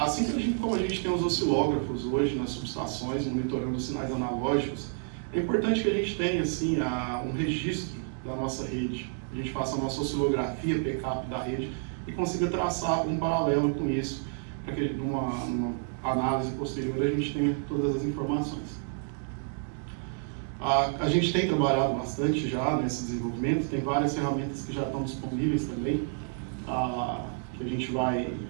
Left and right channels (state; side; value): silent; left; 58 dB below the other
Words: como a gente tem os oscilógrafos hoje nas subestações, monitorando os sinais analógicos, é importante que a gente tenha assim, um registro da nossa rede. A gente faça a nossa oscilografia, backup da rede e consiga traçar um paralelo com isso, para que numa análise posterior a gente tenha todas as informações. A gente tem trabalhado bastante já nesse desenvolvimento, tem várias ferramentas que já estão disponíveis também, que a gente vai